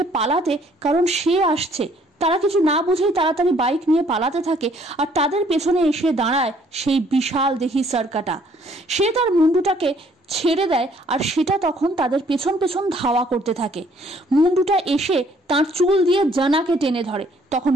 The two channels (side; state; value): both; normal; correlation 0.62